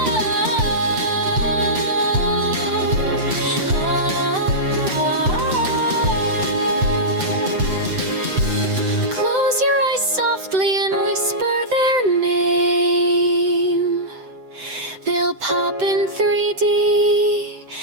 close your eyes softly and whisper their name. They'll pop in 3D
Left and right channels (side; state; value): left; late; 7.8 ms